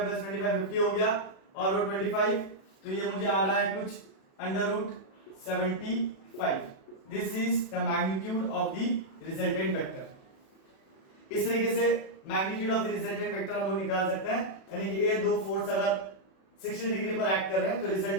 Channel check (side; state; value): right; late; 36 ms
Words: 25 50 हो गया और वो 25, तो ये मुझे आ रहा है कुछ under root 75। This is the magnitude of the resultant vector. इस तरीके से magnitude of the resultant vector हम लोग निकाल सकते हैं, यानी कि ये दो फोर्स अगर 60 डिग्री पर एक्ट कर रहे हैं तो